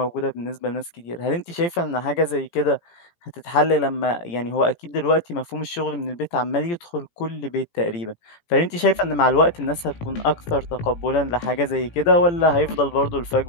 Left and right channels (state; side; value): late; right; 17 ms